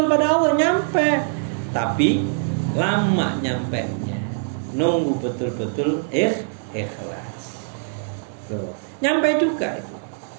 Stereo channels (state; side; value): silent; left; digital silence